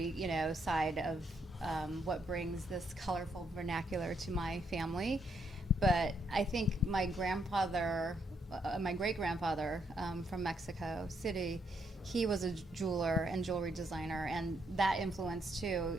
side of what brings this colorful vernacular to my family. But I think my great grandfather from Mexico City, he was a jeweler and jewelry designer, and that influenced too,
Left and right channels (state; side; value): normal; both; correlation 0.75